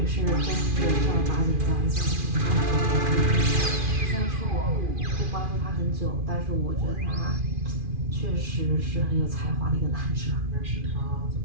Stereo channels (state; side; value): late; left; 2.4 ms